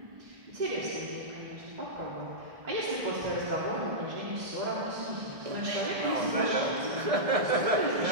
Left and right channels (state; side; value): late; left; 1.6 ms